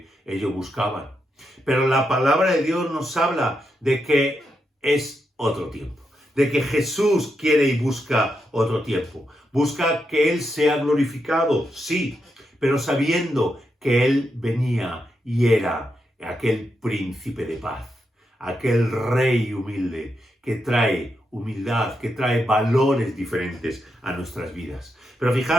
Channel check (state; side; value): normal; both; correlation 0.84